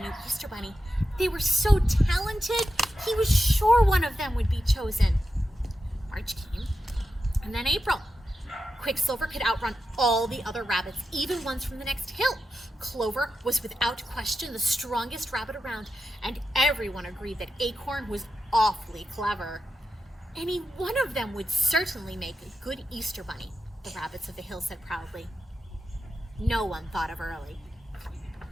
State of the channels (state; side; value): normal; both; correlation 0.90